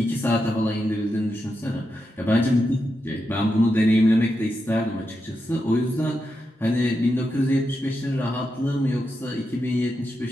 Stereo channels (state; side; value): normal; both; correlation 0.87